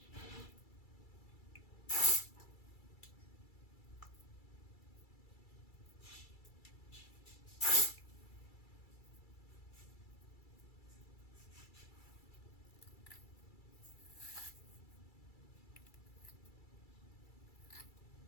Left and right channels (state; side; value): late; right; 2.3 ms